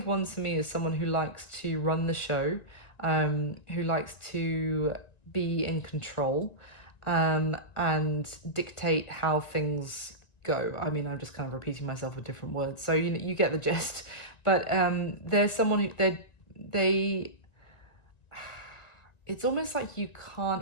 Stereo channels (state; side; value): late; right; 1.9 ms